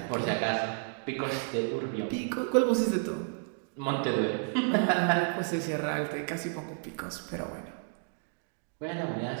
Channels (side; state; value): left; silent; 57 dB below the other